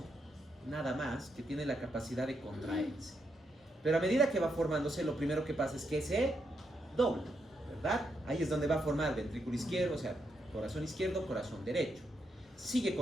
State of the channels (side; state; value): both; normal; correlation 0.81